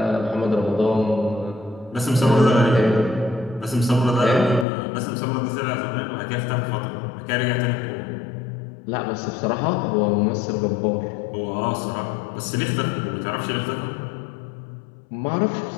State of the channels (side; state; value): right; drops out; at 4.7 s